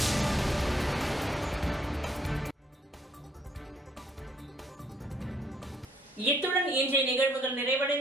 இத்துடன் இன்றைய நிகழ்வுகள்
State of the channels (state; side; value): normal; both; correlation 0.65